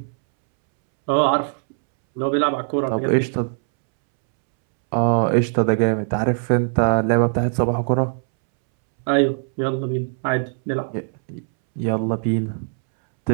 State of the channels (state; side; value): silent; left; 65 dB below the other